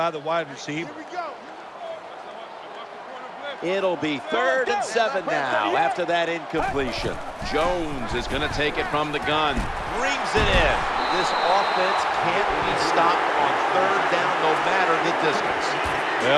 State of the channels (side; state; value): both; identical; correlation 1.00